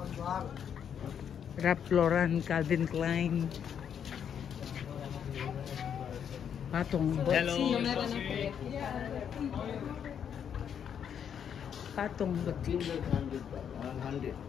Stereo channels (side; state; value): right; quieter; 8.2 dB